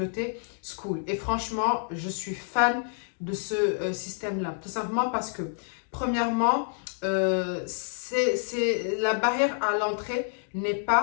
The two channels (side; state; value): right; silent; digital silence